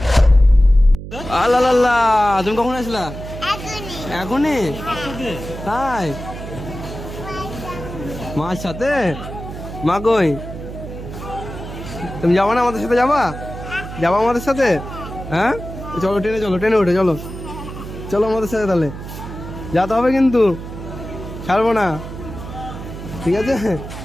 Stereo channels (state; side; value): noise; right; hum, 10 dB below the sound